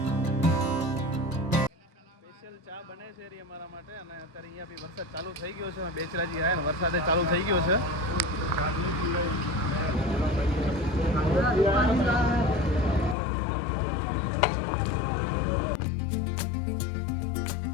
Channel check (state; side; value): drops out; right; at 13.2 s